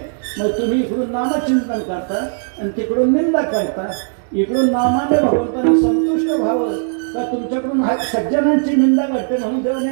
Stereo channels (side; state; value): left; silent; digital silence